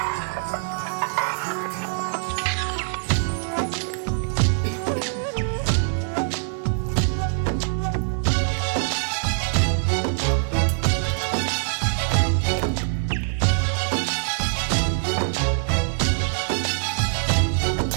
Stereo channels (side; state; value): left; silent; digital silence